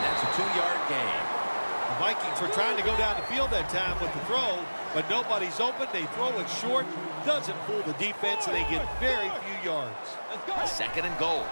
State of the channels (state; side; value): inverted; both; correlation -1.00